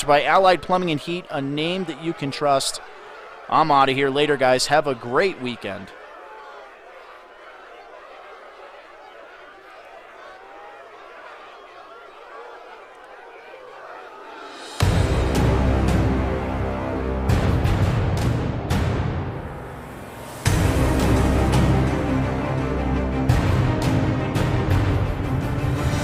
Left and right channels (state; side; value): identical; both; correlation 1.00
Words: by Allied Plumbing and Heat, a name that you can trust. I'm out of here. Later, guys. Have a great weekend.